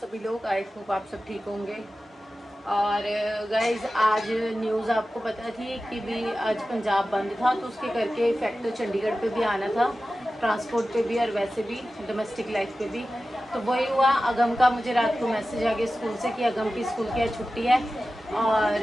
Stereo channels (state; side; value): normal; both; correlation 0.95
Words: लोग। आई होप आप सब ठीक होंगे। और गाइज आज न्यूज़ आपको पता थी कि भी आज पंजाब बंद था, तो उसके करके इफेक्ट तो चंडीगढ़ पे भी आना था, ट्रांसपोर्ट पे भी और वैसे भी डोमेस्टिक लाइफ पे भी। तो वही हुआ, अगम का मुझे रात को मैसेज आ गया स्कूल से कि अगम की स्कूल की आज छुट्टी है।